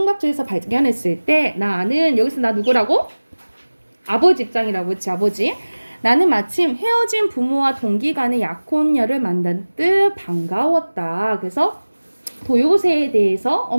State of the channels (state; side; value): inverted; both; correlation -1.00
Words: 발견했을 때 나는 여기서 나 누구라고? 아버지 입장이라고 했지. 아버지. 나는 마침 헤어진 부모와 동기 간의 약혼녀를 만난 듯 반가웠다. 그래서 도요새에 대해서